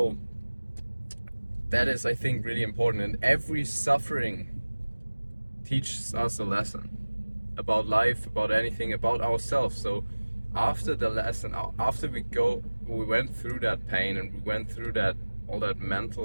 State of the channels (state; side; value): inverted; both; correlation -1.00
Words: that is, I think, really important, and every suffering teaches us a lesson about life, about anything, about ourselves. So after the lesson, after we went through that pain, and we went through all that